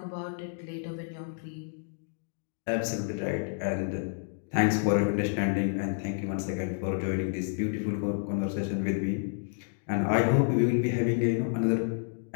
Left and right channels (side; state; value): right; silent; digital silence